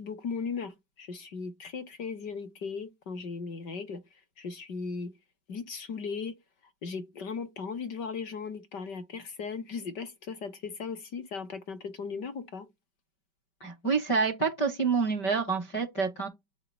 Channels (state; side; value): late; right; 5.2 ms